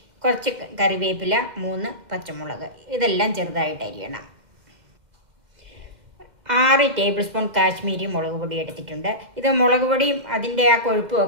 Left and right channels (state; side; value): late; left; 2.1 ms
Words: കുറച്ച് കറിവേപ്പില, 3 പച്ചമുളക്, ഇതെല്ലാം ചെറുതായിട്ട് അരിയണം. 6 ടേബിൾ സ്പൂൺ കാശ്മീരി മുളക് പൊടി എടുത്തിട്ടുണ്ട്. ഇത് മുളക് പൊടിയും അതിൻ്റെ ആ കൊഴുപ്പും